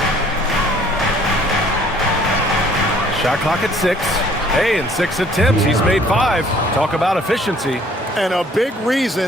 Shot clock at 6. Hey, in 6 attempts, he's made 5. Talk about efficiency. And a big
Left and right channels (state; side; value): normal; both; correlation 0.57